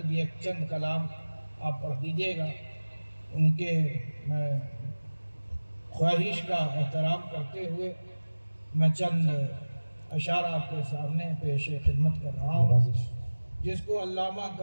یہ چند کلام آپ پڑھ دیجئے گا۔ ان کے میں خواہش کا احترام کرتے ہوئے میں چند اشعار آپ کے سامنے پیش خدمت کر رہا ہوں، جس کو علامہ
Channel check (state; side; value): inverted; both; correlation -1.00